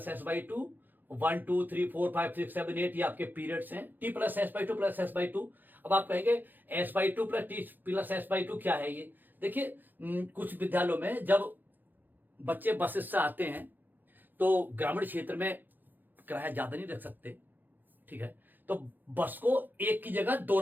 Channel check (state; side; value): late; left; 0.088 ms